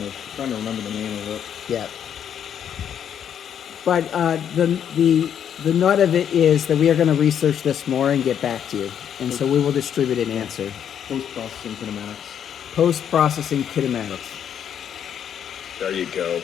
remember the name of it. Yeah. But the nut of it is that we are going to research this more and get back to you, and so we will distribute an answer. Post-processing kinematics. Post-processing kinematics. There you go.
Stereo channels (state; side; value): quieter; right; 8.9 dB